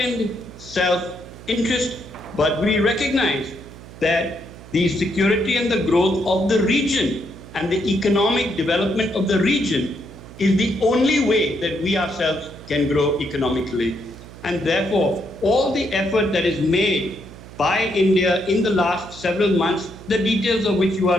self-interest, but we recognize that the security and the growth of the region and the economic development of the region is the only way that we ourselves can grow economically. And therefore, all the effort that is made by India in the last several months, the details of which you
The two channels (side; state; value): right; noise; hum, 17 dB below the sound